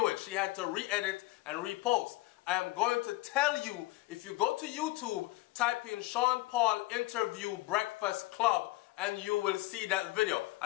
it. She had to re-edit and repost. I am going to tell you, if you go to YouTube, type in Sean Paul interview Breakfast Club and you will see that video.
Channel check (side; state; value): right; quieter; 19.5 dB